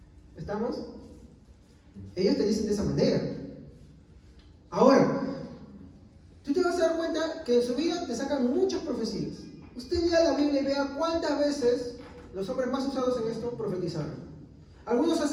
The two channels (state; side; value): identical; both; correlation 1.00